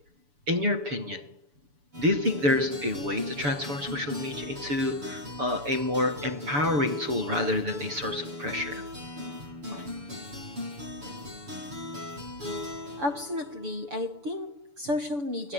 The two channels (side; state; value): left; late; 6.9 ms